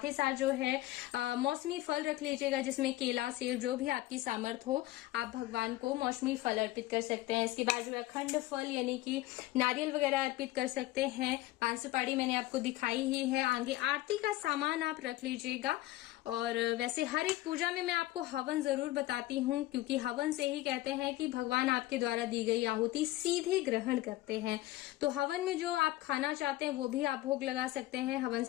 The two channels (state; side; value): quieter; right; 16.9 dB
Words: ही साथ जो है मौसमी फल रख लीजिएगा, जिसमें केला, सेब, जो भी आपकी सामर्थ्य हो आप भगवान को मौसमी फल अर्पित कर सकते हैं। इसके बाद जो है अखंड फल यानी कि नारियल वगैरह अर्पित कर सकते हैं। 5 सुपारी मैंने आपको दिखाई ही है। आगे आरती का सामान आप रख लीजिएगा। और वैसे हर एक पूजा में मैं आपको हवन जरूर बताती हूँ, क्योंकि हवन से ही कहते हैं कि भगवान आपके द्वारा दी गई आहुति सीधे ग्रहण करते हैं। तो हवन में जो आप खाना चाहते हैं वो भी आप भोग लगा सकते हैं, हवन